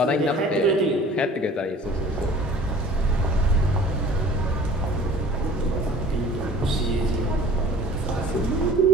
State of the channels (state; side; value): normal; both; correlation 0.47